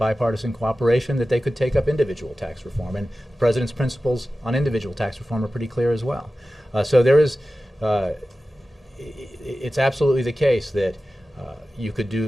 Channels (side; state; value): both; normal; correlation 0.95